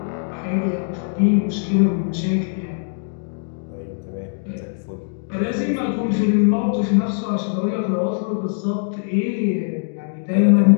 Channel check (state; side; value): silent; right; digital silence